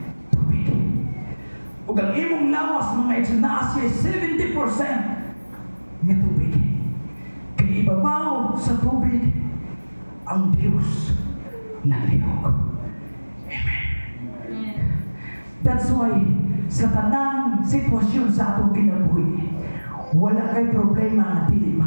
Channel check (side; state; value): both; inverted; correlation -1.00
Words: tubig. Ug ang imong lawas mga igsoon, naa siya 70% nga tubig. Kaya ibabaw sa tubig ang Diyos naglihok. Amen. That's why sa tanang sitwasyon sa atong kinabuhi, wala kay problema nga dili